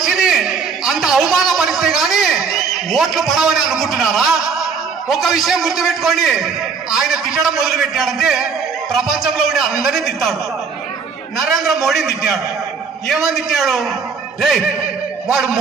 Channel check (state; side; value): quieter; left; 5.4 dB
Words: అంత అవమానపరిస్తే గాని ఓట్లు పడవని అనుకుంటున్నారా? ఒక విషయం గుర్తుపెట్టుకోండి, ఆయన తిట్టడం మొదలు పెట్టాడంటే ప్రపంచంలో ఉండే అందరినీ తిట్టాడు. నరేంద్ర మోడీని తిట్టాడు. ఏమని తిట్టాడు? రే వాడు